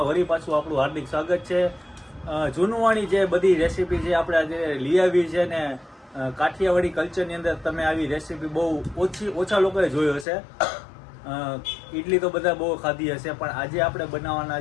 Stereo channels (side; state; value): right; drops out; at 10.2 s